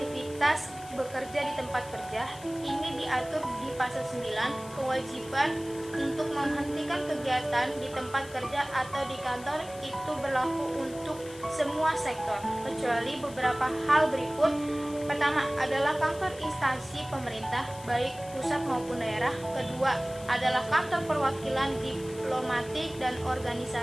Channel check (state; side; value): noise; left; hiss, 18 dB below the sound